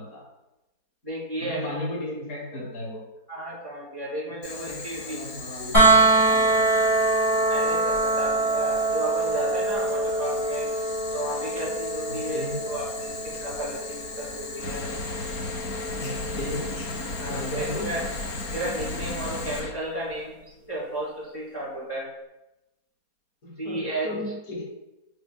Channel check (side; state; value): right; late; 4.2 ms